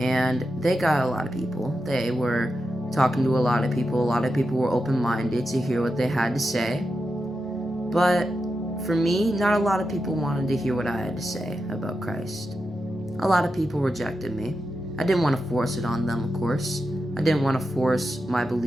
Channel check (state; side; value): normal; both; correlation 0.89